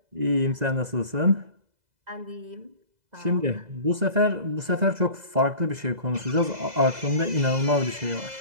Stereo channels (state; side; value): late; left; 2.0 ms